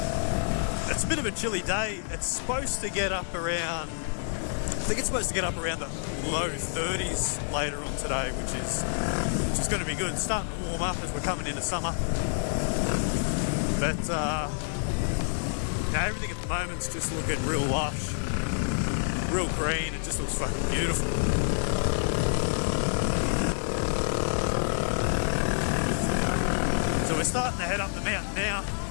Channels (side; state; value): right; silent; digital silence